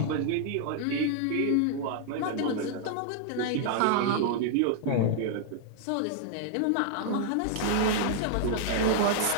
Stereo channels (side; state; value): both; different; correlation -0.01